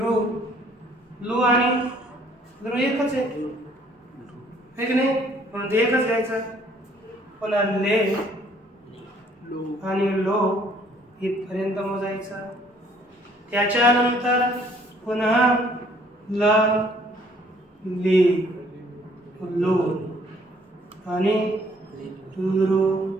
लू आणि लू एकच आहे की नाही, म्हणून ते एकच घ्यायचं. पुन्हा ले आणि लो इथपर्यंत मोजायचं. त्याच्यानंतर पुन्हा ल ली लू आणि लू.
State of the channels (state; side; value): normal; both; correlation 0.61